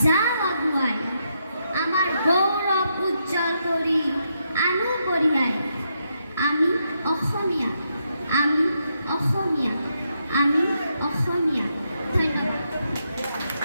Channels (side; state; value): both; inverted; correlation -0.80